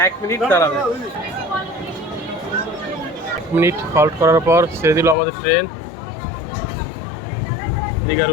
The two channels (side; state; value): right; drops out; at 5.2 s